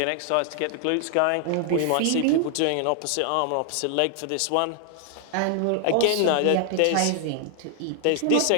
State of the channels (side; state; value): both; different; correlation 0.00